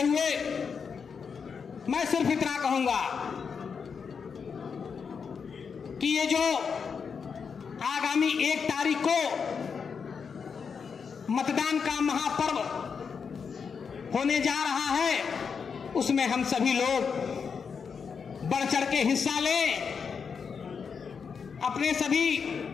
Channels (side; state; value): right; quieter; 6.0 dB